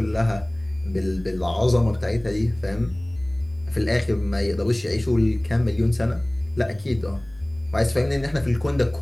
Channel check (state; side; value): noise; right; rumble, 23 dB below the sound